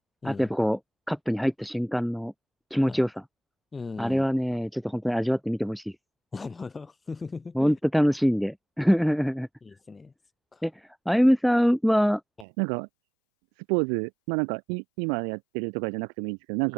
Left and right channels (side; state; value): left; drops out; at 12.5 s